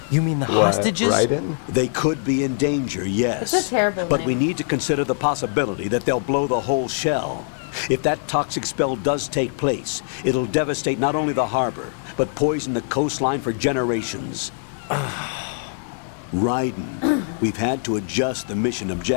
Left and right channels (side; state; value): right; silent; 64 dB below the other